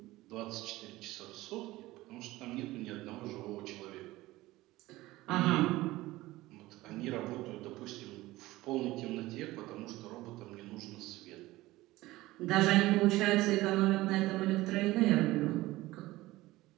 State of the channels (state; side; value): quieter; left; 18.2 dB